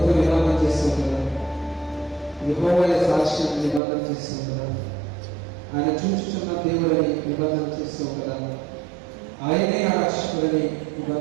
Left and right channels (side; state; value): left; drops out; at 3.8 s